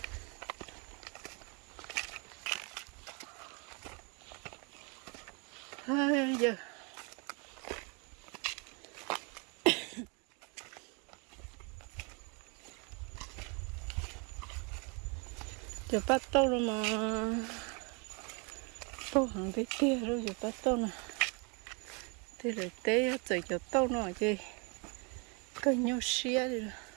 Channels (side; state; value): left; quieter; 33.0 dB